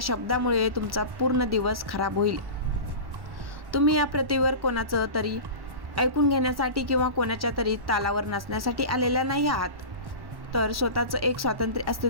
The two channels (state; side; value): late; left; 1.1 ms